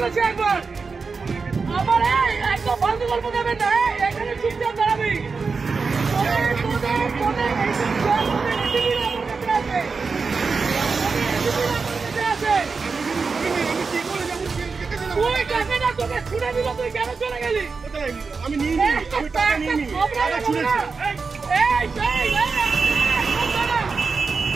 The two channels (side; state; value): left; quieter; 4.7 dB